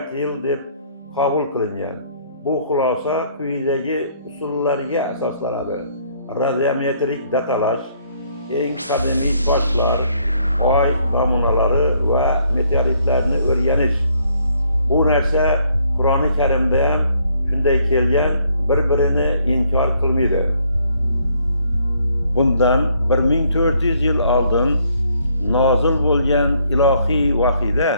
yil deb qabul qilingan. Bu xulosa quyidagi usullarga asoslanadi: radiometrik datalash, eng qadimiy toshlar, oy namunalari va meteoritlarni o'rganish. Bu narsa Qur'oni Karimda ham shunday kelgan, bir-birini inkor qilmaydi. Bundan 1400 yil oldin nozil bo'lgan ilohiy vahiyda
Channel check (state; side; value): inverted; both; correlation -0.67